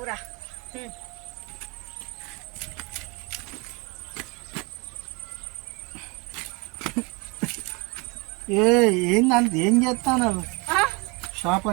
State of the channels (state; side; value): quieter; left; 28.6 dB